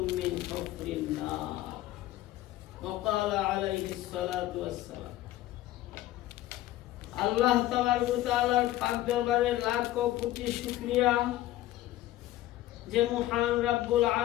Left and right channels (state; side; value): quieter; right; 15.0 dB